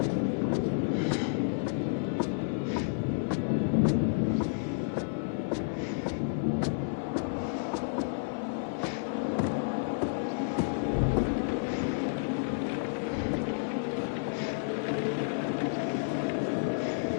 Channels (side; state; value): right; silent; digital silence